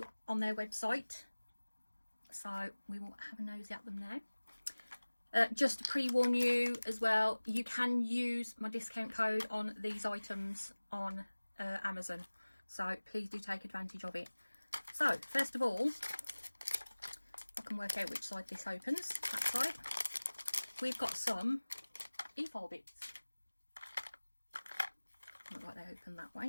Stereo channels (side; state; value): both; inverted; correlation -1.00